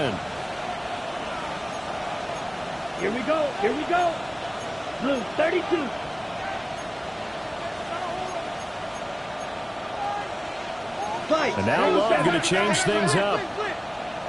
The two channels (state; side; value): identical; both; correlation 1.00